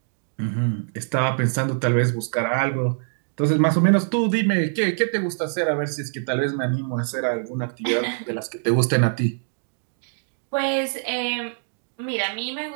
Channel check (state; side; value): silent; left; digital silence